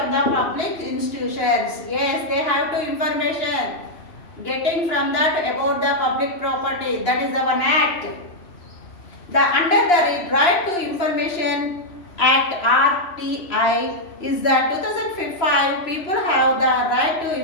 the public institutions. Yes, they have to information getting from that about the public property. That is the one act. Under the Right to Information Act RTI is that 2005 people have the right to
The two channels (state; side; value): late; right; 3.0 ms